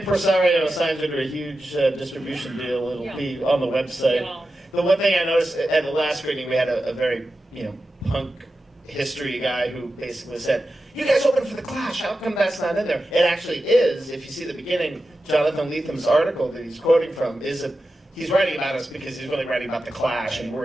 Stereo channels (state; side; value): normal; both; correlation 0.92